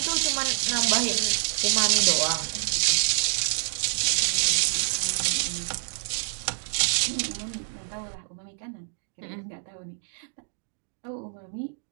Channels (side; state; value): left; silent; digital silence